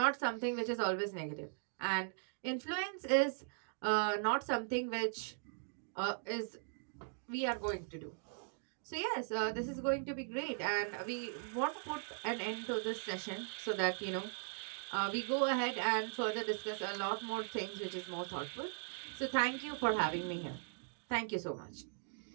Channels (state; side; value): silent; left; digital silence